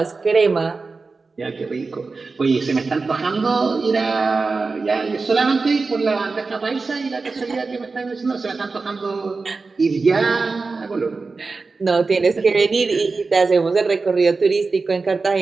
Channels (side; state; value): left; quieter; 4.1 dB